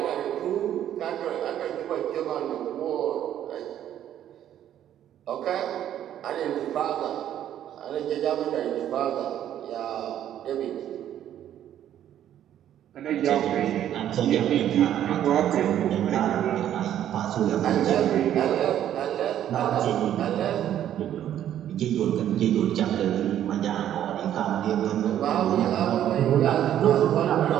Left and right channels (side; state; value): left; quieter; 11.0 dB